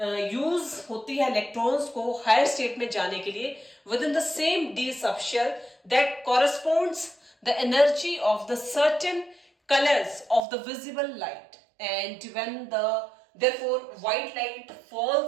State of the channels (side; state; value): left; drops out; at 10.4 s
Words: यूज होती है इलेक्ट्रॉन्स को हायर स्टेट में जाने के लिए with in the same d subshell, that corresponds the energy of the certain colors of the visible light. And when the therefore white light